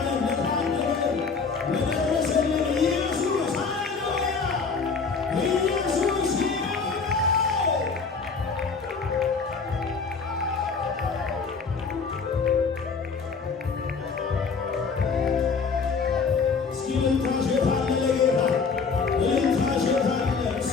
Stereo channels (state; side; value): quieter; right; 5.1 dB